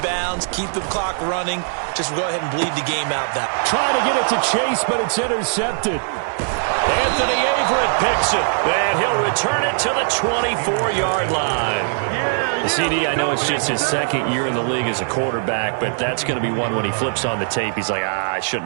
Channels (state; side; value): silent; left; 61 dB below the other